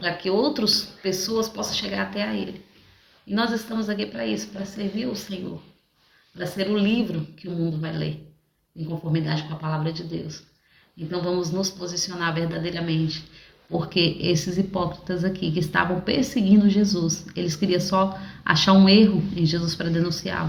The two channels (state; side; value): identical; both; correlation 1.00